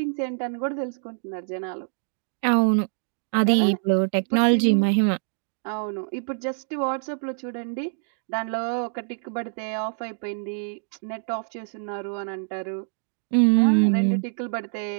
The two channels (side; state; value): left; silent; digital silence